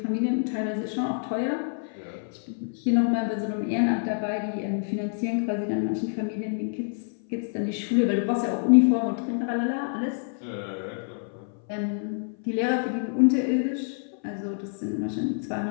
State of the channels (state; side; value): silent; right; 57 dB below the other